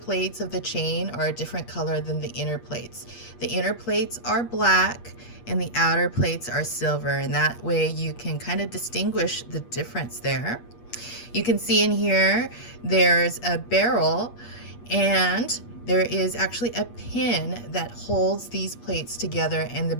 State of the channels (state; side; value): late; right; 8.4 ms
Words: of the chain are a different color than the inner plates. The inner plates are black and the outer plates are silver, and that way you can kind of distinguish the difference there. You can see in here there's a barrel, and there is actually a pin that holds these plates together and the